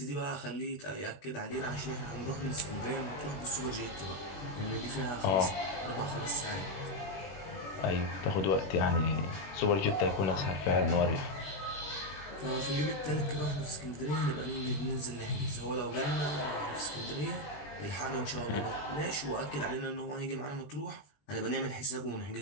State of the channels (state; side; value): late; right; 21 ms